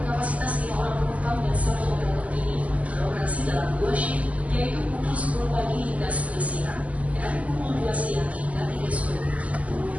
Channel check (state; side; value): late; left; 0.070 ms